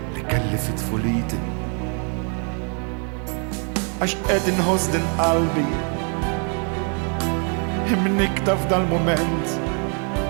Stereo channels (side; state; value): left; quieter; 39.8 dB